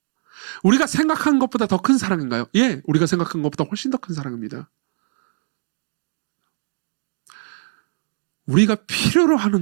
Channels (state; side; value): silent; left; 60 dB below the other